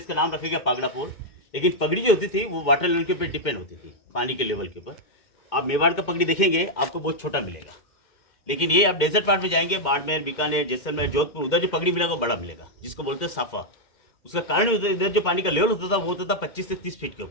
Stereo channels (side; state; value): right; late; 2.1 ms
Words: इसका नाम रखेगा पागड़ा पोल। लेकिन पगड़ी जो होती थी वो वाटर लेवल के ऊपर डिपेंड होती थी, पानी के लेवल के ऊपर। आप मेवाड़ का पगड़ी देखेंगे आपको बहुत छोटा मिलेगा, लेकिन ये आप डेजर्ट पार्ट में जाएंगे, बाड़मेर, बीकानेर, जैसलमेर, जोधपुर, उधर जो पगड़ी मिलेगा वो बड़ा मिलेगा, जिसको बोलते हैं साफा। उसका कारण इधर जो पानी का लेवल होता था वो होता था 25 से 30 फीट के